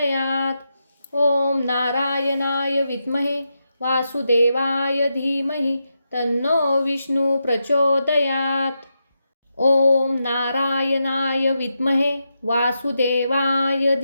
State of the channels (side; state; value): both; inverted; correlation -0.86